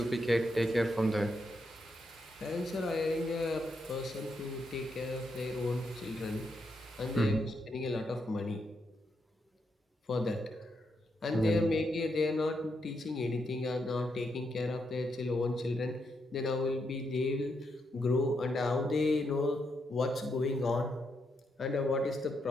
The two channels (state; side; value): normal; both; correlation 0.81